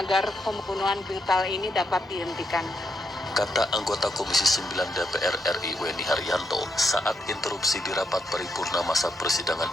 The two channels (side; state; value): both; normal; correlation 0.80